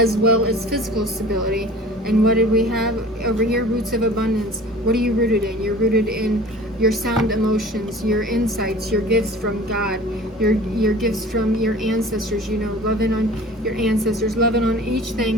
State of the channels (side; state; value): both; normal; correlation 0.43